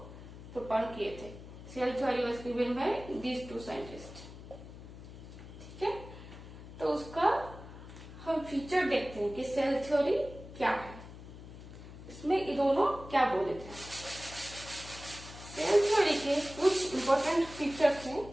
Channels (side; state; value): left; noise; hum, 15 dB below the sound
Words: प्रोपोज किए थे। Cell theory was given by these two scientists. ठीक है, तो उसका हम फीचर देखते हैं कि सेल थ्योरी क्या है, इसमें ये दोनों क्या बोले थे। सेल थ्योरी के कुछ इंपॉर्टेंट फीचर्स हैं,